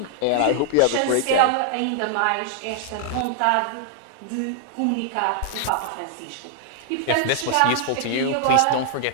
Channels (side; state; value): both; different; correlation -0.01